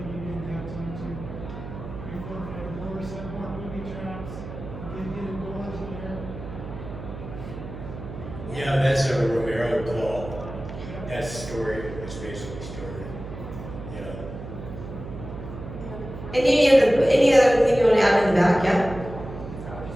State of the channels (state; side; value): noise; right; hum, 10 dB below the sound